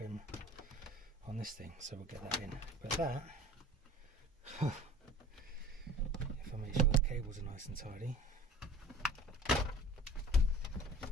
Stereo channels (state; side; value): normal; both; correlation 0.43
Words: on this thing, so we'll get that in. But that, if I make sure the cables are nice and tidy,